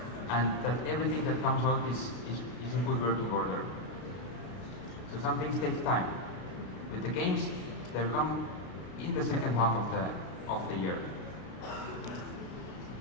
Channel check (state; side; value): late; right; 33 ms